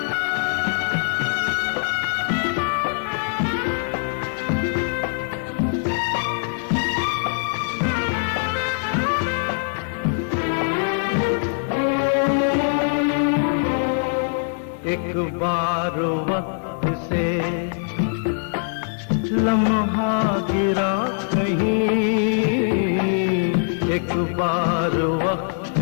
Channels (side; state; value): right; silent; digital silence